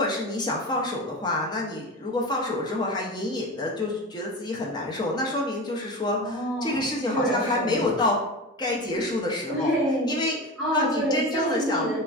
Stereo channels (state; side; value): normal; both; correlation 0.27